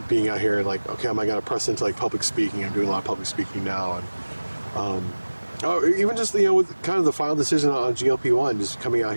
being out here and like, okay, am I going to press into like public speaking? I'm doing a lot of public speaking now, and even just with kind of the final decision on GLP-1, just coming out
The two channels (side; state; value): both; inverted; correlation -1.00